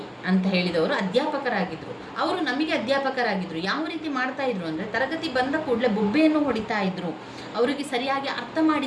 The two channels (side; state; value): both; identical; correlation 1.00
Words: ಅಂತ ಹೇಳಿದವರು ಅಧ್ಯಾಪಕರಾಗಿದ್ದರು. ಅವರು ನಮಗೆ ಅಧ್ಯಾಪಕರಾಗಿದ್ದರು. ಯಾವ ರೀತಿ ಮಾಡ್ತಾ ಇದ್ರು ಅಂದರೆ, ತರಗತಿ ಬಂದ ಕೂಡಲೇ ಬೊಬ್ಬೆಯನ್ನು ಹೊಡಿತಾ ಇದ್ರು, ಅವರಿಗೆ ಸರಿಯಾಗಿ ಅರ್ಥ